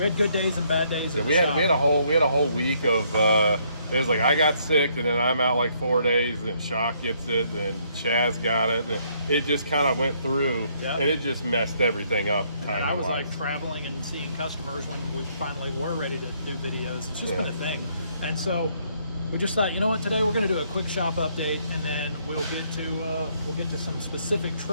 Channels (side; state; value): both; inverted; correlation -0.69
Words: good days and bad days. Yeah, we had a whole week of it was like I got sick, and then I'm out like 4 days, and then Shock gets it, and then Chaz got it, and it just kind of went through, and it just messed everything up. And I was like traveling and seeing customers when we finally were ready to do videos. It's just been a thing, and so we just thought, you know what, today we're going to do a quick shop update, and then we'll get to some specific